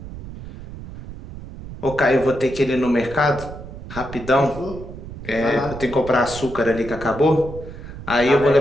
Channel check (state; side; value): noise; right; rumble, 13 dB below the sound